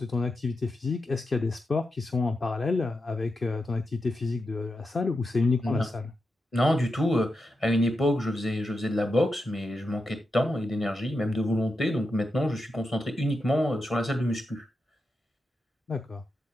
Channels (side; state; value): both; normal; correlation 0.88